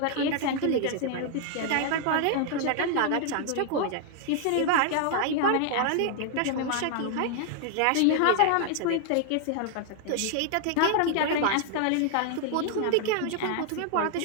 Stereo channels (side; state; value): both; different; correlation 0.00